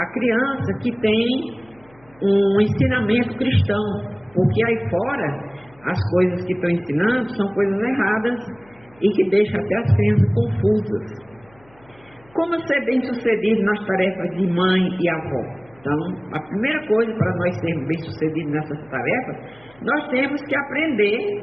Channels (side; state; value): left; noise; hum, 29 dB below the sound